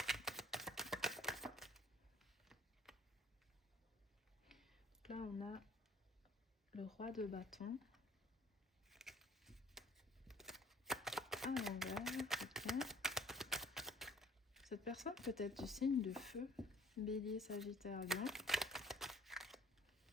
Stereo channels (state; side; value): normal; both; correlation 0.53